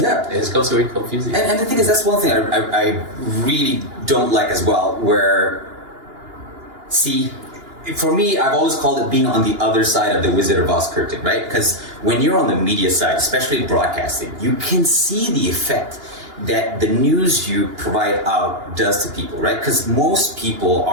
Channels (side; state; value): left; late; 2.9 ms